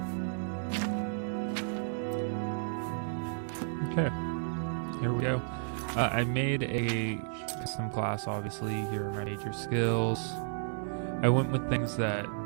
Okay, here we go. I made a custom class, obviously. Here are my major skills. I went with things that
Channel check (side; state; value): left; silent; 56 dB below the other